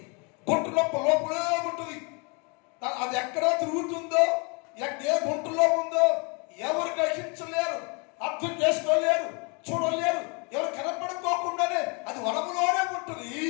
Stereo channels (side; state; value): right; quieter; 32.7 dB